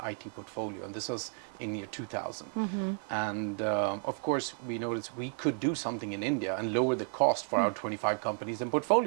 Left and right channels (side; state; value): left; silent; 56 dB below the other